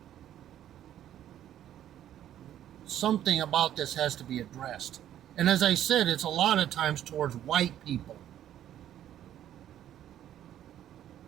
Something about this has to be addressed. And as I said, it's a lot of times towards white people.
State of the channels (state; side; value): quieter; left; 11.4 dB